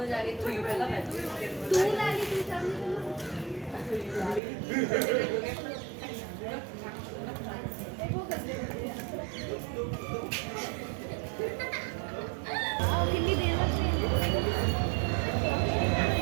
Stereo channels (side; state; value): left; drops out; at 4.4 s